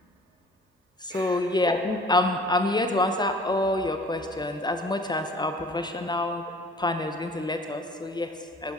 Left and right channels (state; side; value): normal; both; correlation 0.48